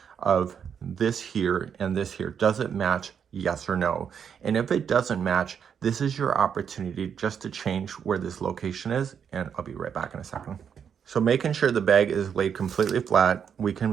of this here and this here. Does it match? Yes or no? And if it doesn't match, this is your opportunity just to change where this location is, and I'll be right back in a second. So making sure the bag is laid completely flat, we can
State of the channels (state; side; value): quieter; left; 7.6 dB